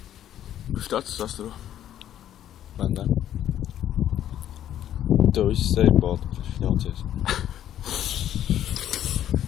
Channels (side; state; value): right; quieter; 11.2 dB